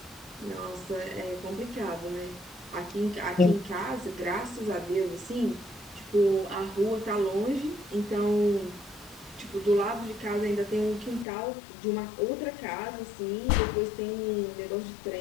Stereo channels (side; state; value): right; drops out; at 11.2 s